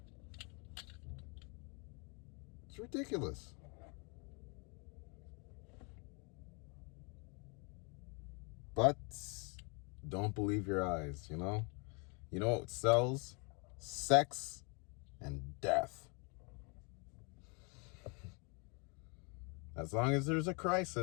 It's ridiculous. But don't believe your eyes, you know? You know what sells? Sex and death. As long as there's a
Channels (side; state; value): right; quieter; 33.1 dB